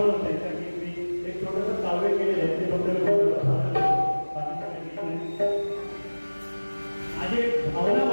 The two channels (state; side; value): inverted; both; correlation -1.00